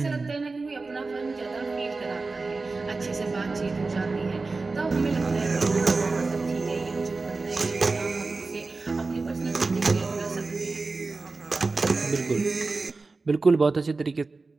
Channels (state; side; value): quieter; left; 3.8 dB